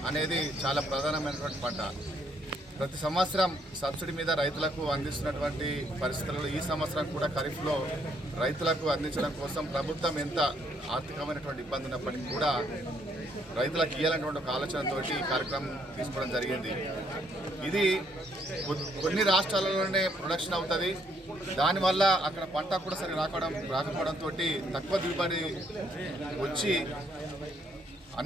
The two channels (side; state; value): both; normal; correlation 0.70